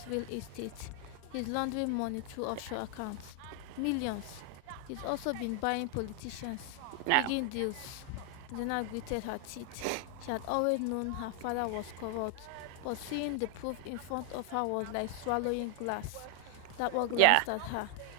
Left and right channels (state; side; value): different; both; correlation 0.00